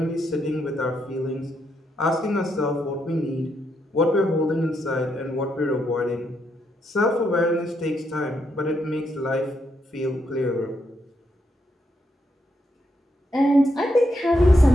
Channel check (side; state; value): both; normal; correlation 0.79